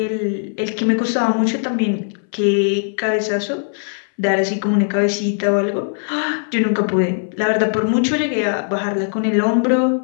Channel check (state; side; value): silent; right; 62 dB below the other